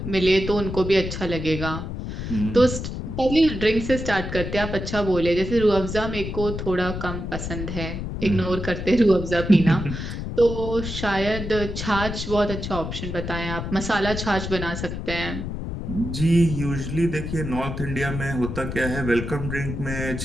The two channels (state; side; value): noise; left; rumble, 6 dB below the sound